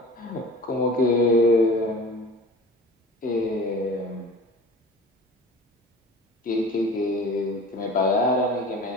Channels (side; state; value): both; normal; correlation 0.39